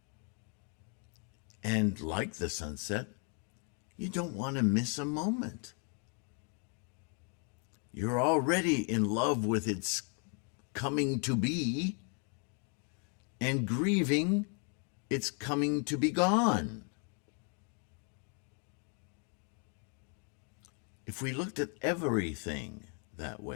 And like the sunset, you don't want to miss a moment. You're already in love with its coming to be and grieving its coming to be gone. If we looked at everything that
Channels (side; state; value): right; quieter; 39.0 dB